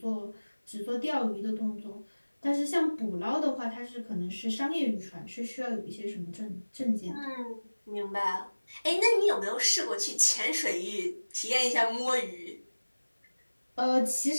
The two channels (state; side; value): inverted; both; correlation -1.00